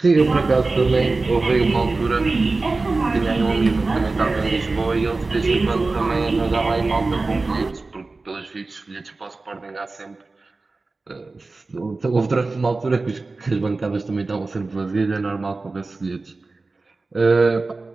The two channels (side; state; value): left; quieter; 3.6 dB